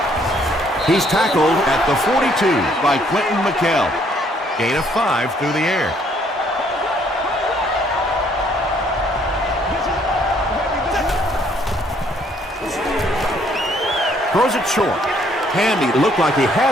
He's tackled at the 42 By Quentin McKell. Gain of 5 through the air. Throws it short. Handy looked like he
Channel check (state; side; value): normal; both; correlation 0.65